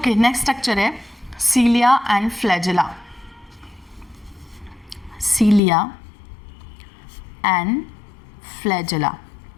नेक्स्ट स्ट्रक्चर है सीलिया एंड फ्लैजेला। सीलिया एंड फ्लैजेला,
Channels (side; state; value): right; drops out; at 5.6 s